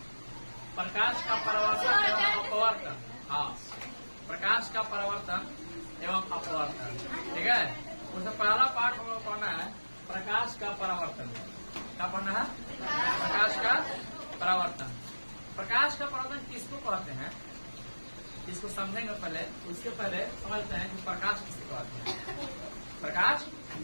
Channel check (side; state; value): both; inverted; correlation -1.00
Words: प्रकाश का परावर्तन एवं अपवर्तन। हाँ, प्रकाश का परावर्तन एवं अपवर्तन। ठीक है, उसमें पहला पार्ट हम लोग पढ़ना है प्रकाश का परावर्तन। क्या पढ़ना है? प्रकाश का परावर्तन। प्रकाश का परावर्तन किसको कहते हैं, इसको समझेंगे पहले। उसके पहले समझते हैं कि प्रकाश किसे कहते हैं। प्रकाश